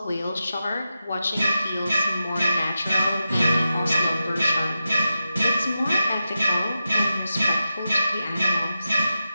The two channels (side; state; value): both; inverted; correlation -0.90